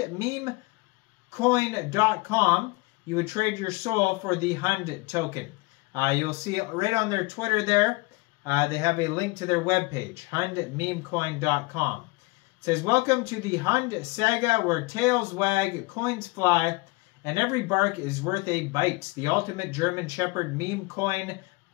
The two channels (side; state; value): right; quieter; 25.0 dB